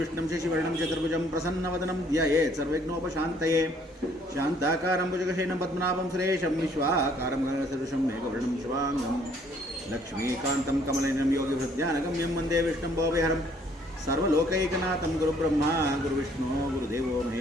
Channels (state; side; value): normal; both; correlation 0.62